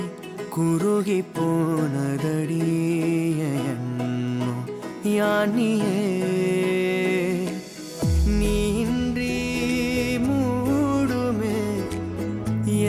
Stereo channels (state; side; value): identical; both; correlation 1.00